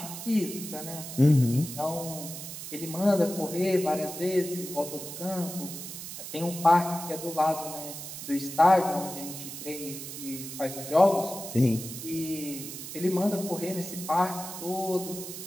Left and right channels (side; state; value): right; noise; hiss, 9 dB below the sound